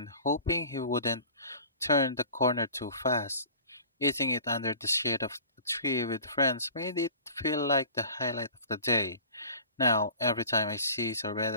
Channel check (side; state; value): both; inverted; correlation -0.44